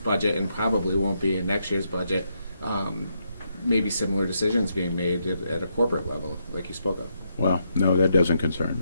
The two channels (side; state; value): both; inverted; correlation -0.79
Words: and probably won't be in next year's budget. Maybe similar decisions being made at a corporate level, like you spoke of. Well, no, that doesn't concern